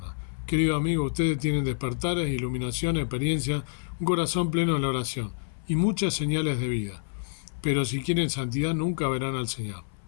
Querido amigo, ustedes tienen despertares, iluminación, experiencia, un corazón pleno en la oración y muchas señales de vida. Pero si quieren santidad nunca verán al Señor.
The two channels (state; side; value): silent; right; 60 dB below the other